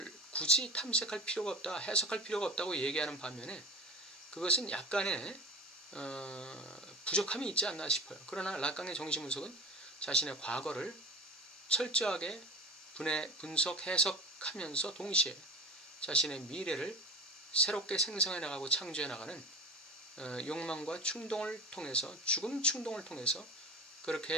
굳이 탐색할 필요가 없다, 해석할 필요가 없다고 얘기하는 반면에 그것은 약간의 부족함이 있지 않나 싶어요. 그러나 락강의 정신분석은 자신의 과거를 철저하게 분석, 해석하면서 동시에 자신의 미래를 새롭게 생성해 나가고 창조해 나가는 욕망과 충동을 통해서, 죽음 충동을 통해서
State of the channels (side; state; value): both; normal; correlation 0.32